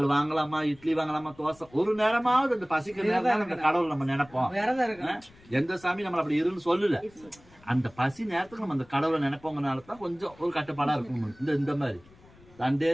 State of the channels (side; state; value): left; noise; rumble, 26 dB below the sound